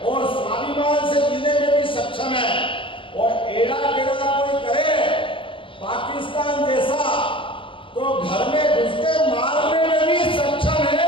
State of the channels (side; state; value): right; late; 0.25 ms